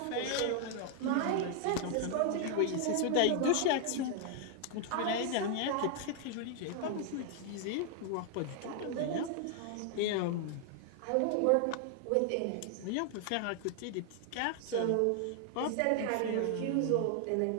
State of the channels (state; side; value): different; both; correlation 0.00